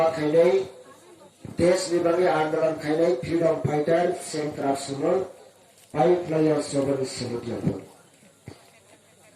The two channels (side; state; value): both; identical; correlation 1.00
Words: खाई देश विभागी आंदोलन खाई फ्रीडम फाइटर सेंट्रल सुनर पाई प्लेयर सभा समिति